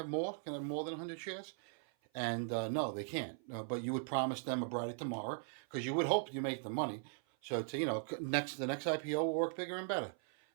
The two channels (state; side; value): silent; left; 52 dB below the other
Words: more? Can I have more than 100 shares? And no, they can't. But you would promise them a brighter tomorrow because you would hope you make the money. So to, the next IPO will work bigger and better.